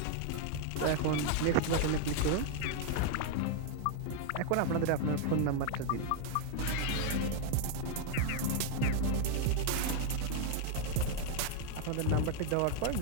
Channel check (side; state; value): both; different; correlation 0.00